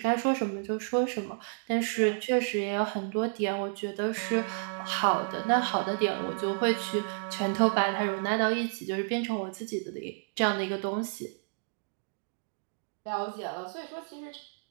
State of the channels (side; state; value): left; silent; digital silence